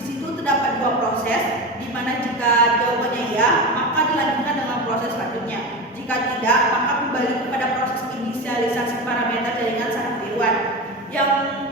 situ terdapat dua proses, di mana jika jawabannya ya, maka dilanjutkan dengan proses selanjutnya. Jika tidak, maka kembali kepada proses inisialisasi parameter jaringan saraf tiruan. Yang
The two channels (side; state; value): both; normal; correlation 0.24